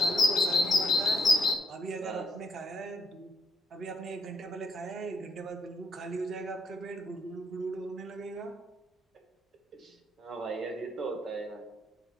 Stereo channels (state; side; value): normal; both; correlation 0.72